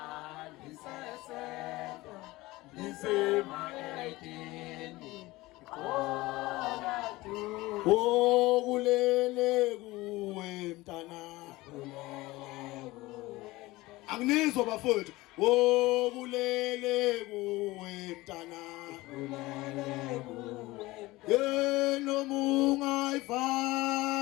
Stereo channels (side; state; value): right; quieter; 19.8 dB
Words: Oh kulele kuwe mntana Angizwa bafowethu oh kulele kuwe mntana Nomunga